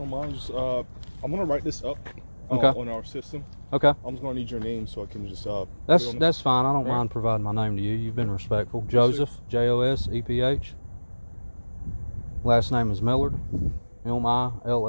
don't mind, just, I'm gonna write this up on our system. Okay. I'm just gonna need your name so I can just. That's fine. I don't mind providing my name to you. You've been respectful. Joseph, Joseph. Last name is Millard,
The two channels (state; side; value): inverted; both; correlation -1.00